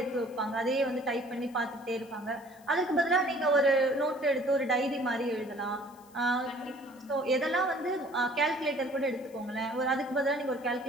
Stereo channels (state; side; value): noise; left; hiss, 27 dB below the sound